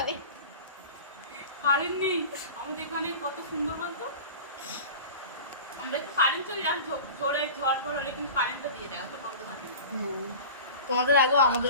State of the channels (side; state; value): both; inverted; correlation -0.36